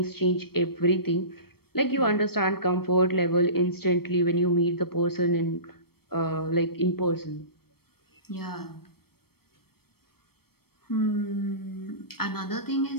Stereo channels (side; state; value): right; late; 0.95 ms